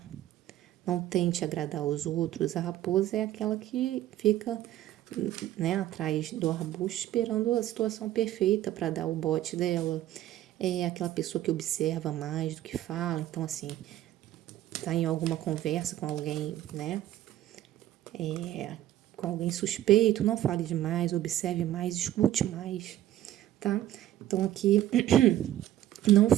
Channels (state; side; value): quieter; left; 13.3 dB